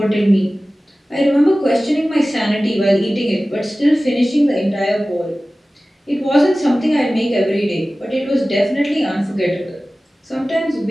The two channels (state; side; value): normal; both; correlation 0.97